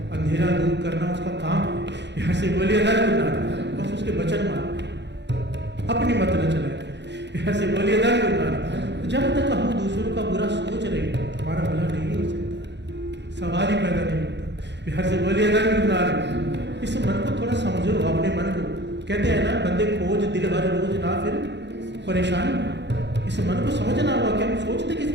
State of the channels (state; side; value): late; left; 0.51 ms